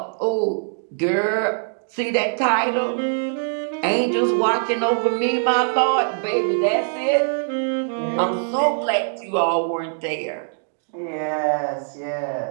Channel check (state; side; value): silent; left; digital silence